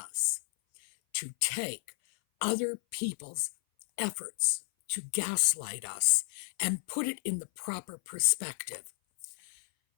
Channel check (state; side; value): silent; right; 56 dB below the other